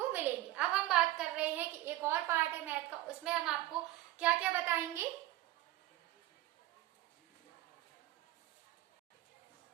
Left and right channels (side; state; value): left; quieter; 15.9 dB